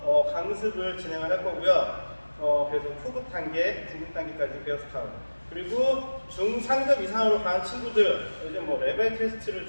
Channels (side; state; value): both; inverted; correlation -1.00